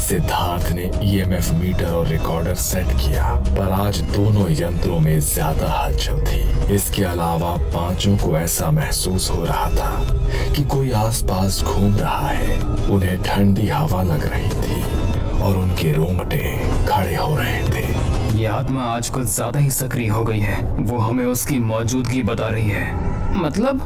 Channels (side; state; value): both; identical; correlation 1.00